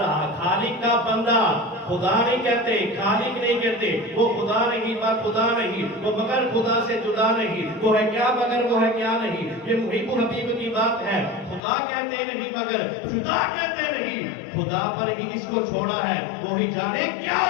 خالق کا بندہ، خدا نہیں کہتے، خالق نہیں کہتے، وہ خدا نہیں با خدا نہیں، وہ مگر خدا سے جدا نہیں، وہ ہے کیا مگر وہ ہے کیا نہیں. یہ محب حبیب کی بات ہے. خدا کہتے نہیں مگر جدا کہتے نہیں، خدا پر ہی اس کو چھوڑا ہے، وہی جانے کیا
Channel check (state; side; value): drops out; right; at 11.6 s